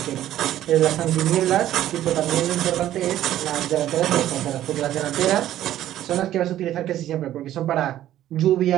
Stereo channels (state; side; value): quieter; left; 12.7 dB